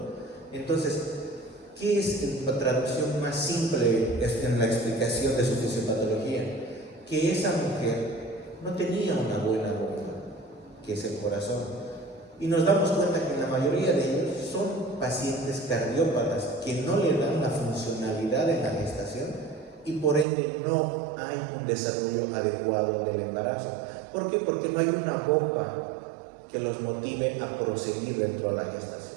Entonces, ¿qué es la traducción más simple en la explicación de su fisiopatología? Que esa mujer no tenía una buena bomba, que es el corazón. Y nos damos cuenta que la mayoría de ellos son pacientes cardiópatas que no le dan la funcionalidad en la gestación y por ende no hay un desarrollo adecuado del embarazo. ¿Por qué? Porque no hay una bomba que los motive a proseguir dentro de la gestación.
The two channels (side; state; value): left; drops out; at 20.2 s